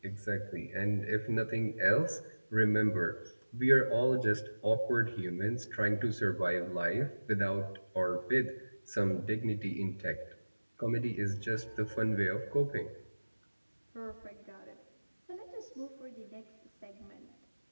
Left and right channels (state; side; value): inverted; both; correlation -1.00